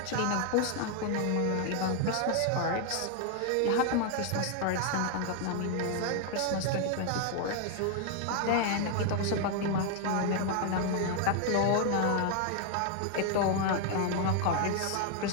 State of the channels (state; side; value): different; both; correlation 0.00